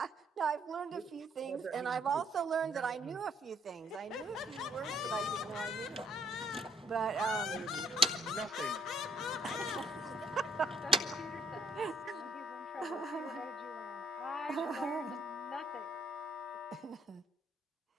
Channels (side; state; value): both; normal; correlation 0.66